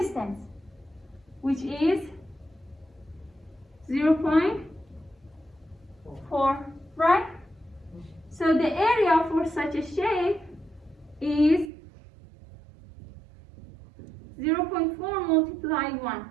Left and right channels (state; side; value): drops out; left; at 11.7 s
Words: which is 0.4, right? So the area for such a shape is 0.4 multiplied 1.